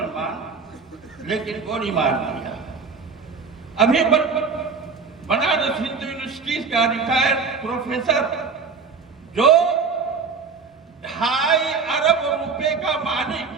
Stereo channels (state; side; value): quieter; left; 5.1 dB